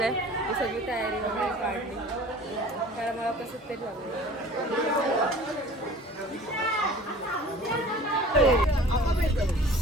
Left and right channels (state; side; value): normal; both; correlation 0.45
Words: ही सगळी तयारी वगैरे काढली कारण मला कसं तरी लागलं.